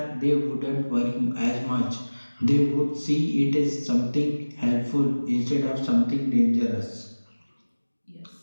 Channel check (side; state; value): both; inverted; correlation -1.00